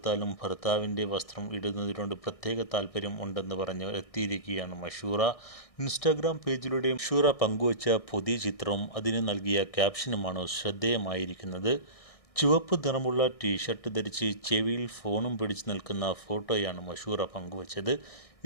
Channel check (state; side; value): late; right; 1.6 ms